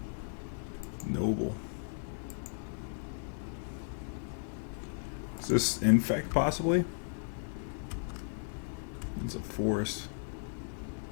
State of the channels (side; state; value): right; silent; digital silence